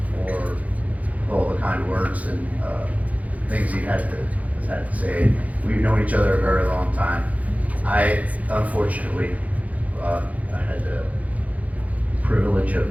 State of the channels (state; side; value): late; left; 0.071 ms